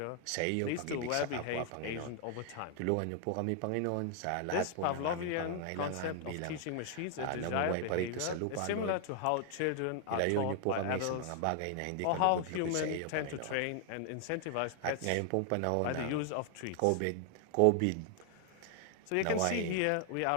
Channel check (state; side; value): different; both; correlation 0.00